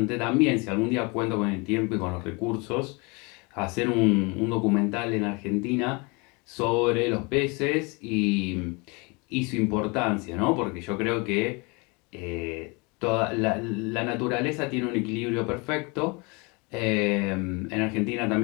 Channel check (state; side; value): quieter; right; 29.1 dB